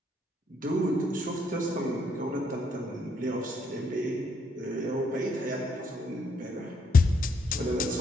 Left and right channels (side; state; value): both; normal; correlation 0.72